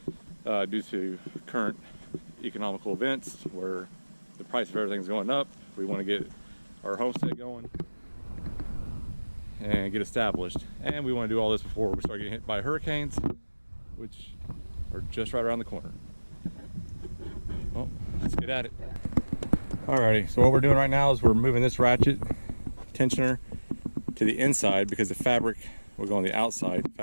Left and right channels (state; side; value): inverted; both; correlation -1.00